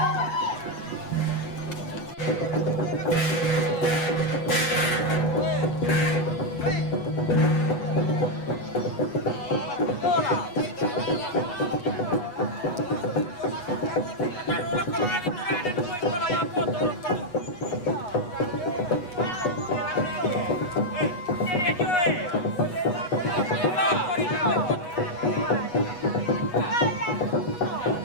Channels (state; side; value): late; right; 8.2 ms